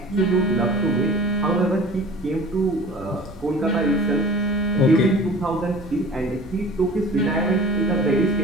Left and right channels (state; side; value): noise; right; rumble, 24 dB below the sound